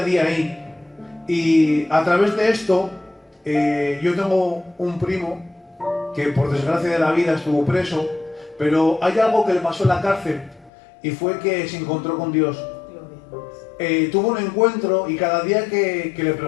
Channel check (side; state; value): right; drops out; at 10.7 s